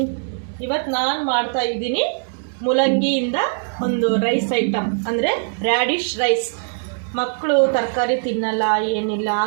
ಇವತ್ತು ನಾನು ಮಾಡ್ತಾ ಇದ್ದೀನಿ ಮೂಲಂಗಿಯಿಂದ ಒಂದು ರೈಸ್ ಐಟಮ್, ಅಂದರೆ ರ್ಯಾಡಿಶ್ ರೈಸ್. ಮಕ್ಕಳು ತರಕಾರಿ ತಿನ್ನಲ್ಲ, ಏನಿಲ್ಲ,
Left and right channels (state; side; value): silent; left; 64 dB below the other